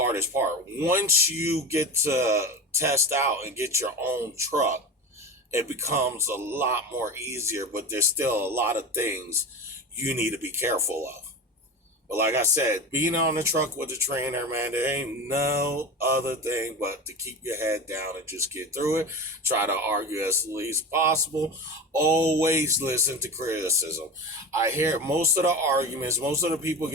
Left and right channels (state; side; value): normal; both; correlation 0.28